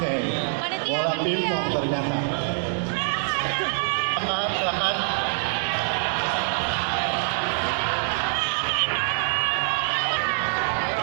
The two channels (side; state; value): left; silent; 62 dB below the other